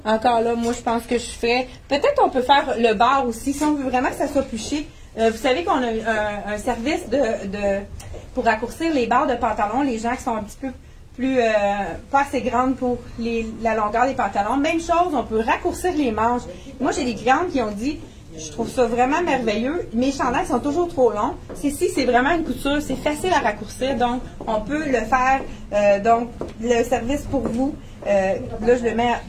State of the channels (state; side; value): identical; both; correlation 1.00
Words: Encore là, moi, je pense que je ferais... Peut-être on peut faire le bord aussi, si on veut vraiment que ça soit plus chic. Vous savez qu'on a un service pour raccourcir les barres de pantalon, les gens qui sont un petit peu plus, pas assez grandes pour la longueur des pantalons. Même chose, on peut raccourcir les manches. Moi, j'ai des clientes qui ont dit, je trouve ça vraiment merveilleux, mes chandails sont toujours trop longs. C'est vraiment une couture, c'est facile à raccourcir, donc on peut le faire, donc le service pour vous. Là, je le mets